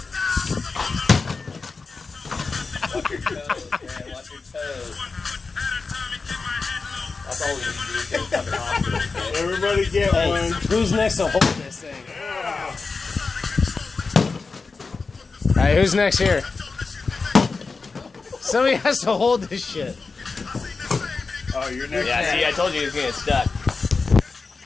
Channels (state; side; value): quieter; right; 4.3 dB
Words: Watch your toes, man. Watch your toes. That's all we need to do is get a fucking hospital. Okay? Everybody get one. Who's next to hold this thing? Alright, who's next here? Somebody has to hold this shit. Oh, you're next. Yeah, see, I told you he was getting stuck.